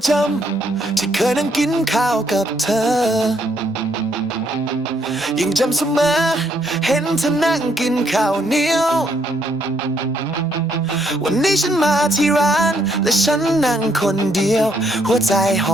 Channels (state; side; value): normal; both; correlation 0.71